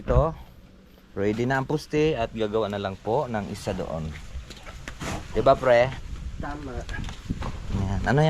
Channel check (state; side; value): identical; both; correlation 1.00